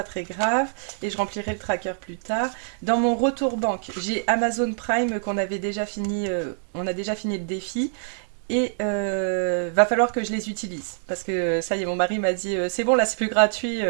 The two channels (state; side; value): silent; left; digital silence